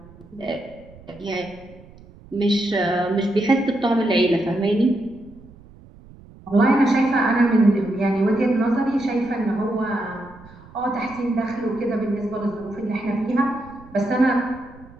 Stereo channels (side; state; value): right; noise; rumble, 22 dB below the sound